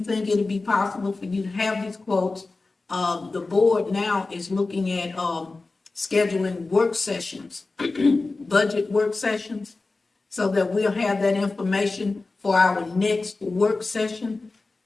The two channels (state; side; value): quieter; right; 3.5 dB